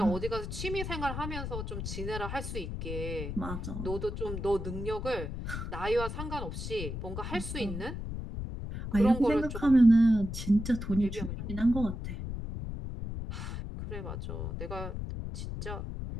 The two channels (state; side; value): noise; left; rumble, 5 dB below the sound